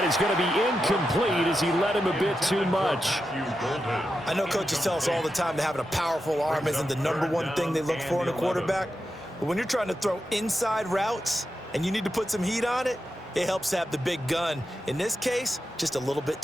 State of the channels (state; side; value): normal; both; correlation 0.89